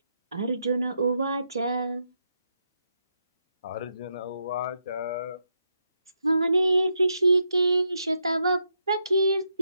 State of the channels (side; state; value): both; inverted; correlation -0.82